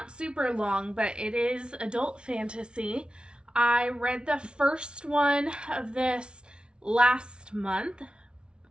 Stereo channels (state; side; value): late; left; 0.056 ms